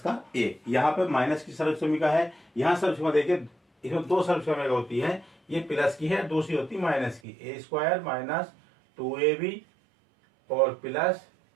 का a, यहाँ पे माइनस की सर्वसम्मिका है, यहाँ सर्वसम्मिका देखिए इसमें 2 सर्वसम्मिका होती है, ये प्लस की है, दूसरी होती माइनस की, a स्क्वायर माइनस 2ab और प्लस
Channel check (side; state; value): left; drops out; at 7.2 s